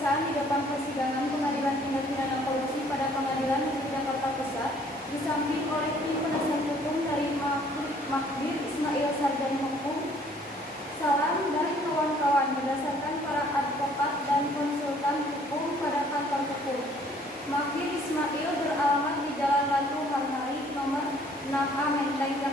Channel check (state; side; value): normal; both; correlation 0.59